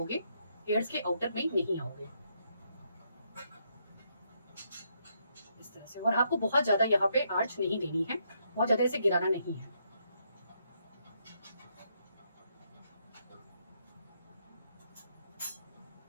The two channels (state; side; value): inverted; both; correlation -0.76